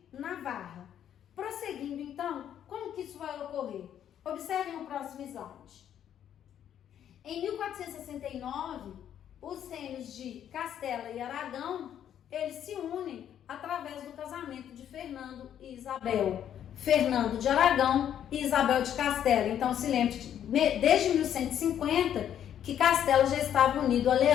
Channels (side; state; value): right; quieter; 10.0 dB